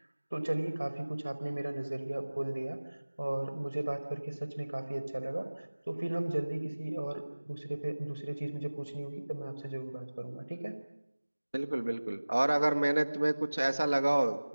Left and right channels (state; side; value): inverted; both; correlation -1.00